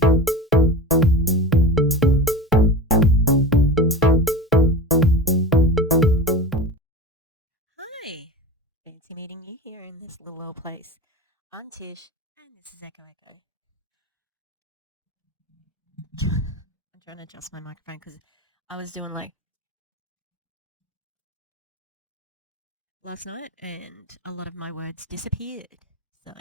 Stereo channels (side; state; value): both; normal; correlation 0.31